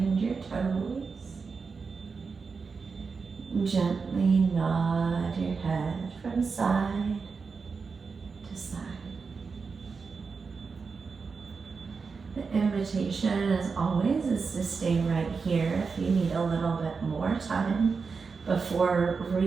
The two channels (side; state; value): left; quieter; 5.0 dB